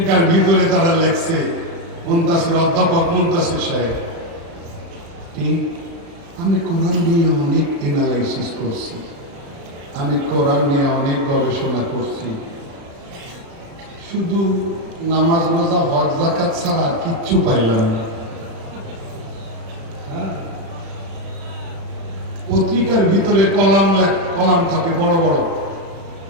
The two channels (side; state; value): left; late; 36 ms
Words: ভিতরে তারা লিখছে, মুনতাসির, অধ্যাপক মুনতাসির সাহেব, আমি কোরআন নিয়ে অনেক এনালাইসিস করছি, আমি কোরআন নিয়ে অনেক গবেষণা করছি, শুধু নামাজ রোজা হজ যাকাত ছাড়া কিচ্ছু পাইলাম না। পত্রিকার ভিতরে কলাম থাকে বড় বড়,